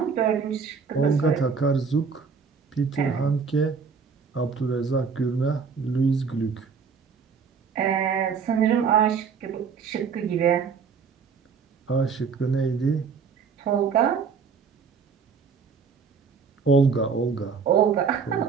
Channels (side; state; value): left; quieter; 5.7 dB